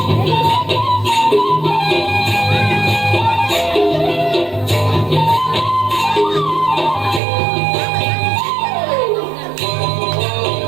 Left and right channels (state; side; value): drops out; left; at 7.2 s